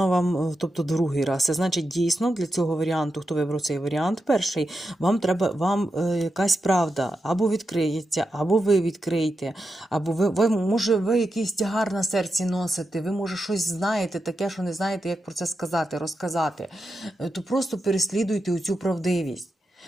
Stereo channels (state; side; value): normal; both; correlation 0.88